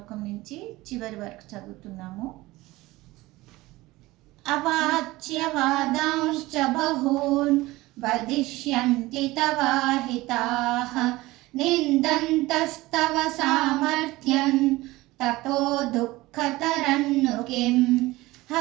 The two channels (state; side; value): quieter; left; 19.4 dB